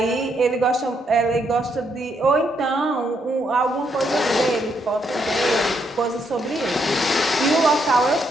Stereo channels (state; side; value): normal; both; correlation 0.75